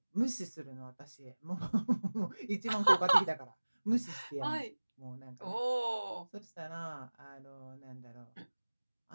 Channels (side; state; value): both; inverted; correlation -1.00